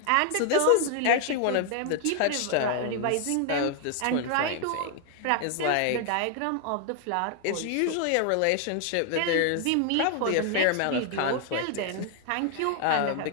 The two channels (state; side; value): different; both; correlation 0.00